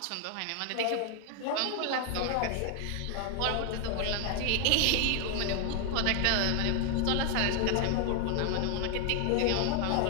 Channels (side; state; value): both; different; correlation 0.00